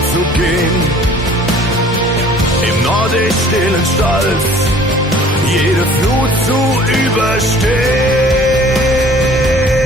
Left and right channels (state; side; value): normal; both; correlation 0.52